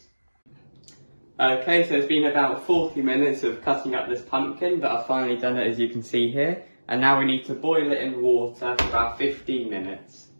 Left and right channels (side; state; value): both; inverted; correlation -1.00